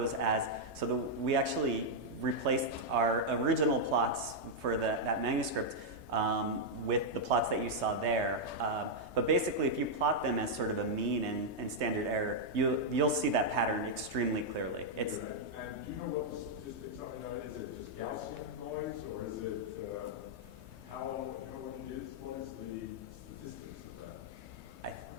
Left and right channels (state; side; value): late; left; 3.2 ms